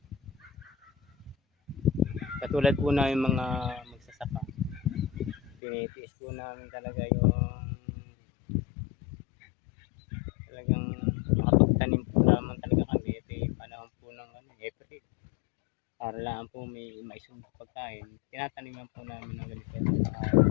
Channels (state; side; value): drops out; right; at 5.6 s